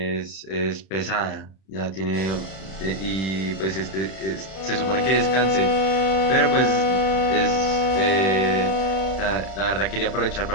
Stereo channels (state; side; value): late; right; 31 ms